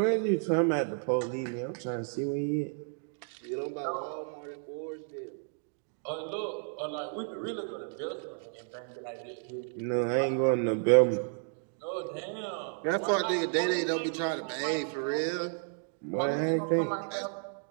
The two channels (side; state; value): left; silent; 56 dB below the other